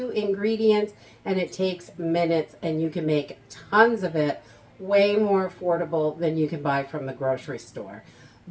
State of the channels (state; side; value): identical; both; correlation 1.00